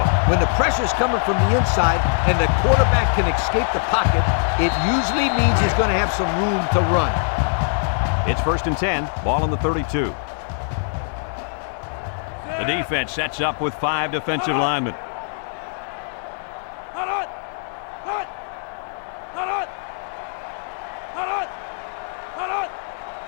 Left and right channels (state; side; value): silent; right; 62 dB below the other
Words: When the pressure's coming from the inside and the quarterback can escape the pocket, it usually means he's going to have some room to run. It's 1st and 10. Ball on the 32. The defense sets up with 5 defensive linemen.